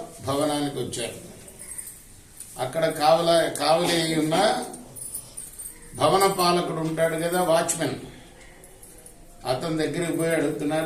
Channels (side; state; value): both; identical; correlation 1.00